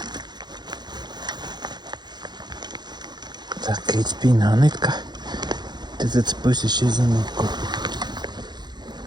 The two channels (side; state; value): left; late; 0.21 ms